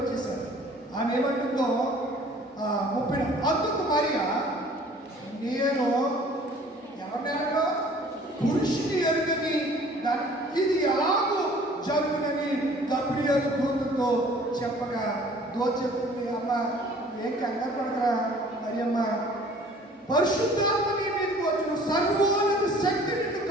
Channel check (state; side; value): normal; both; correlation 0.51